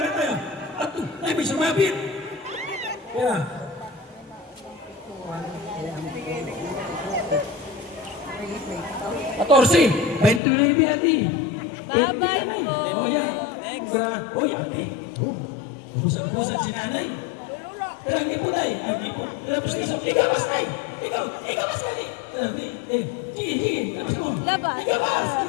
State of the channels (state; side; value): drops out; right; at 10.4 s